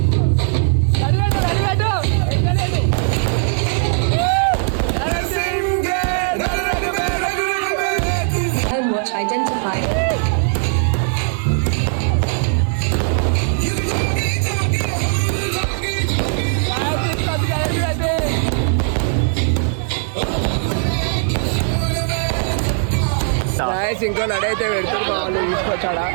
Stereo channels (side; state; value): left; silent; digital silence